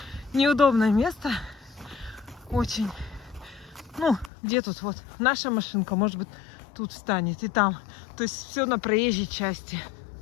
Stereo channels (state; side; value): drops out; right; at 4.3 s